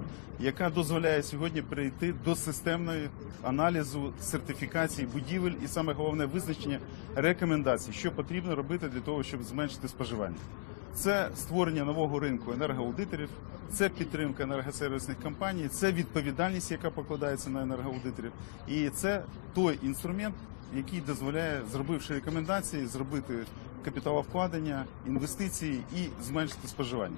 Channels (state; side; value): quieter; right; 37.4 dB